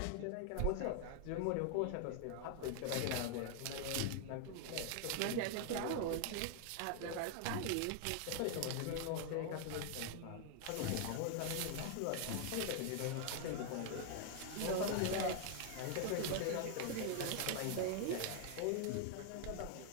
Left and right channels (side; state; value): both; different; correlation 0.00